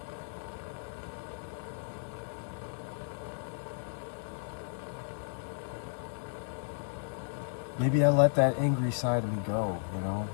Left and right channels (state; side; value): silent; right; digital silence